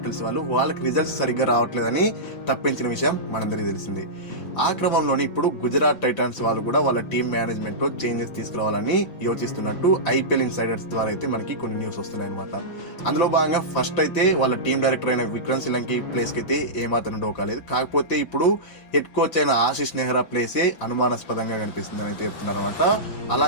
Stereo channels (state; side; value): late; right; 5.9 ms